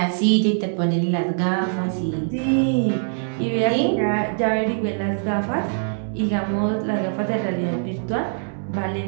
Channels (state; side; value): silent; left; digital silence